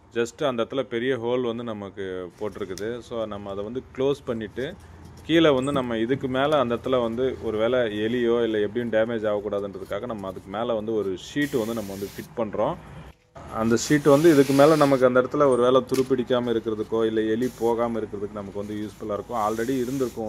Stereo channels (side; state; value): both; identical; correlation 1.00